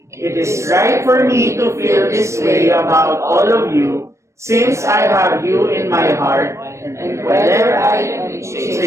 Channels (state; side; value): late; left; 0.14 ms